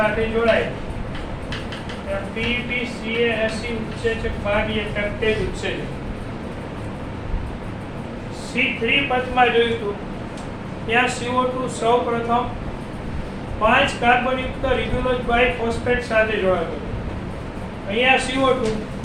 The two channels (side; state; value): both; identical; correlation 1.00